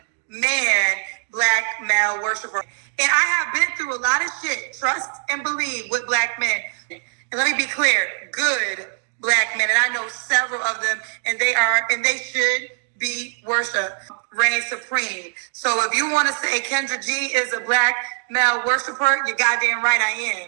man, black male worshiper. And I have been through a lot of shit, trust and believe, with black men. And let me be clear, good black men. And I know several of them, and they should be worshiped. Reign supreme. So if you want to say Kendra G is a black male worshiper, you're goddamn right I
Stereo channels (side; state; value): left; silent; digital silence